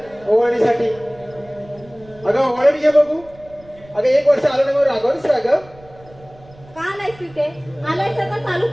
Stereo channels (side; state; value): right; noise; rumble, 24 dB below the sound